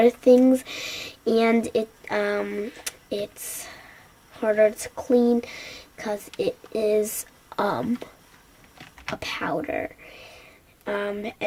things, and it's harder to clean, because it is a powder.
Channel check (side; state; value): both; identical; correlation 1.00